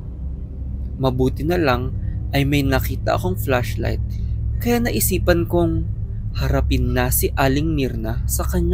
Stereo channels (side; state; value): both; identical; correlation 1.00